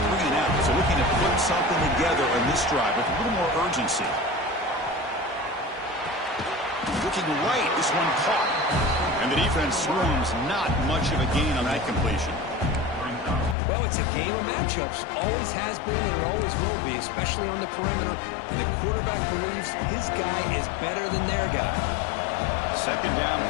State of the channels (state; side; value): drops out; right; at 13.6 s